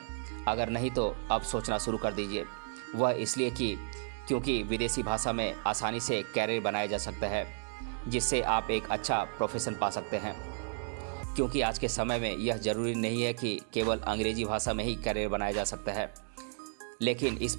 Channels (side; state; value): left; silent; digital silence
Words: अगर नहीं तो अब सोचना शुरू कर दीजिए। वह इसलिए क्योंकि विदेशी भाषा में आसानी से कैरियर बनाया जा सकता है, जिससे आप एक अच्छा प्रोफेशन पा सकते हैं। क्योंकि आज के समय में यह ज़रूरी नहीं है कि केवल अंग्रेजी भाषा में ही कैरियर बनाया जा सकता है, लेकिन इस